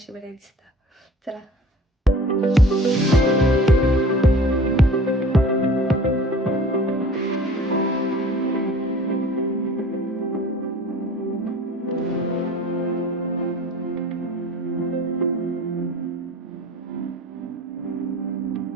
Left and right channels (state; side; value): normal; both; correlation 0.44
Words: बरें दिसता. चला.